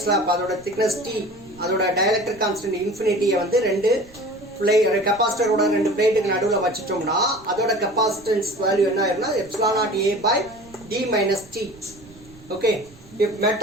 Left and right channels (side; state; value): right; noise; rumble, 24 dB below the sound